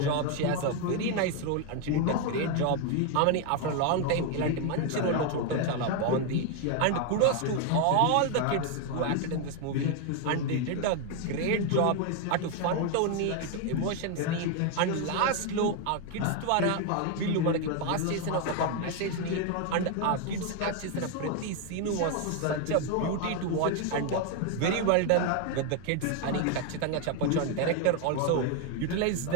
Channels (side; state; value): both; different; correlation 0.01